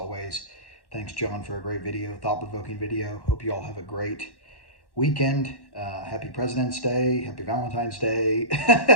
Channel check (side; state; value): right; late; 1.1 ms